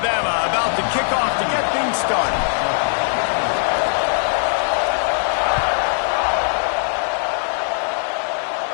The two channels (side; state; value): right; silent; digital silence